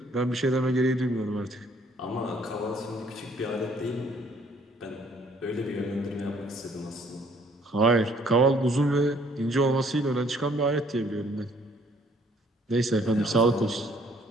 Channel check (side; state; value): both; normal; correlation 0.62